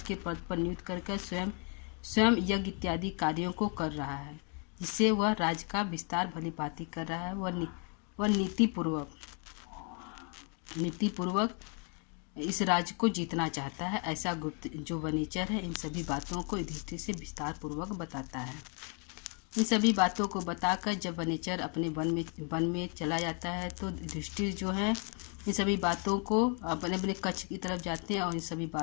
के पद पर नियुक्त करके स्वयं यज्ञ इत्यादि कार्यों को कर रहा है, जिससे वह राज्य का विस्तार भली भांति कर रहा है। वह नीतिपूर्वक इस राज्य को जीतना चाहता है, ऐसा गुप्त जो वनेचर है इन सभी बातों को युधिष्ठिर से विस्तार पूर्वक बताता है। इन सभी बातों को बताकर जब वनेचर अपने वन में चला जाता है तो युधिष्ठिर जो है इन सभी बातों को अपने कक्ष की तरफ जाते हैं और इन सभी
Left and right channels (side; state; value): right; quieter; 38.5 dB